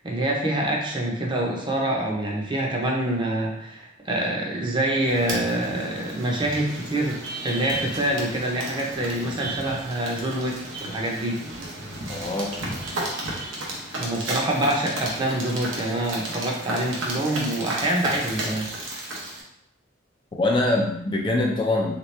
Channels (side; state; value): both; normal; correlation 0.34